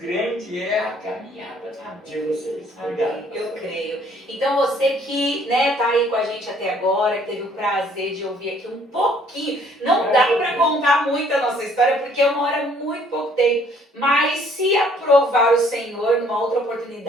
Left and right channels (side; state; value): both; normal; correlation 0.61